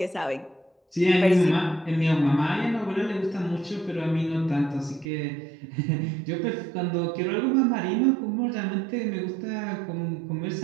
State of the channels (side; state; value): left; drops out; at 5.1 s